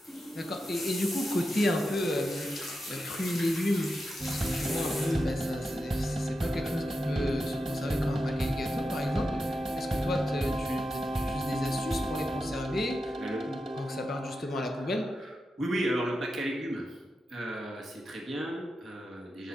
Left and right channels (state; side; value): normal; both; correlation 0.89